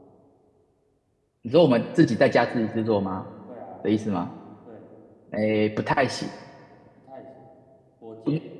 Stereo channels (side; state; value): both; identical; correlation 1.00